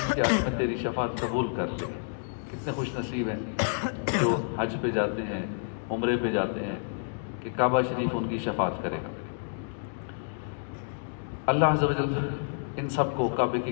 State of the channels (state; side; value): silent; right; digital silence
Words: کے حق میں تیری شفاعت قبول کر لی۔ کتنے خوش نصیب ہیں جو حج پہ جاتے ہیں، عمرے پہ جاتے ہیں کہ کعبہ شریف ان کی شفاعت کرے گا۔ اللہ عز و جل ان سب کو کعبے کے